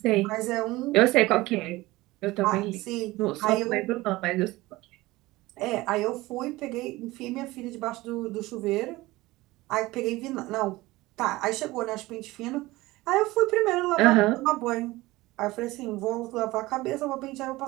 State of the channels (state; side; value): quieter; left; 19.5 dB